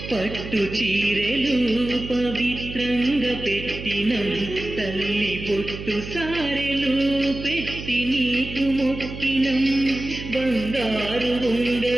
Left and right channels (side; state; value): right; noise; hum, 10 dB below the sound